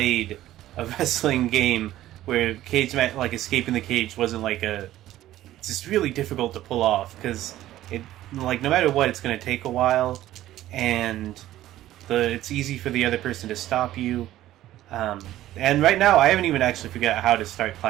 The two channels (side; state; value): left; quieter; 14.2 dB